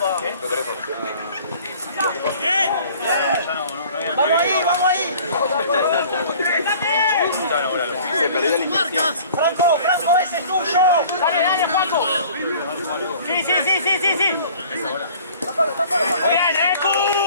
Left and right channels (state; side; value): inverted; both; correlation -0.49